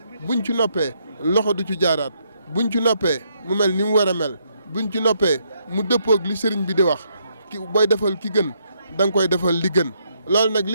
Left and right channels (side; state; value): both; inverted; correlation -0.74